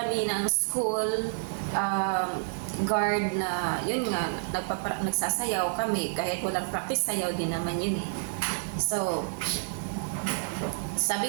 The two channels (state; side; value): silent; left; digital silence